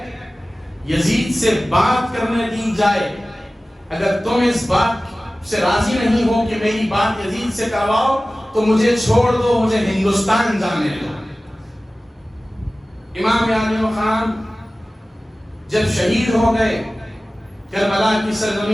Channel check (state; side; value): normal; both; correlation 0.97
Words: یزید سے بات کرنے دی جائے۔ اگر تم اس بات سے راضی نہیں ہو کہ میری بات یزید سے کرواؤ تو مجھے چھوڑ دو، مجھے ہندوستان جانے دو۔ امام عالی مقام جب شہید ہو گئے کربلا کی